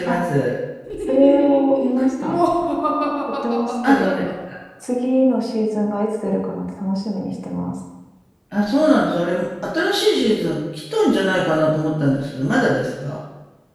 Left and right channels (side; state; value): both; identical; correlation 1.00